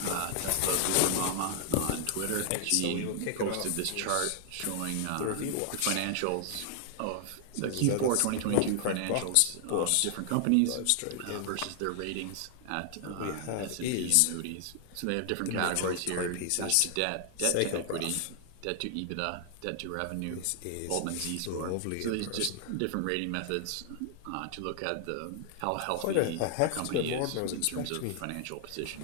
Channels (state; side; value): different; both; correlation 0.00